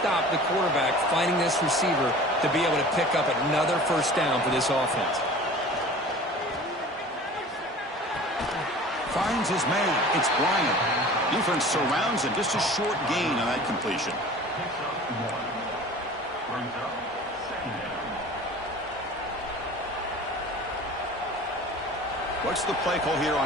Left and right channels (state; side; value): normal; both; correlation 0.42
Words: the quarterback finding this receiver to be able to pick up another first down for this offense. Finds his man. It's Bryant. Defense surrounds him. Just a short gain on that completion. What's the play call here